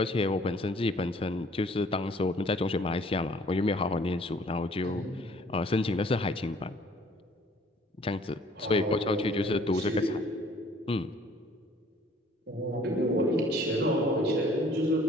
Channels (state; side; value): normal; both; correlation 0.57